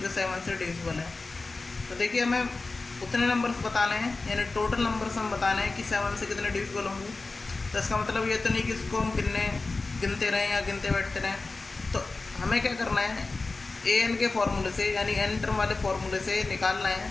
जो 7 से डिविजिबल हैं। तो देखिए, हमें उतने नंबर्स बताने हैं, यानी टोटल नंबर्स हम बताने हैं कि 7 से कितने डिविजिबल होंगे। तो इसका मतलब ये तो नहीं कि इसको हम गिनते रहें या गिनते बैठते रहें। तो हमें क्या करना है, ए एन के फॉर्मूले से, यानी एन टर्म वाले फॉर्मूले से निकालना है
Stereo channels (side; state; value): right; quieter; 3.6 dB